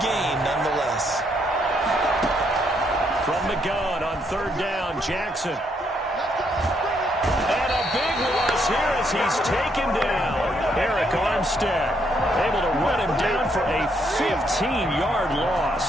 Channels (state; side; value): normal; both; correlation 0.74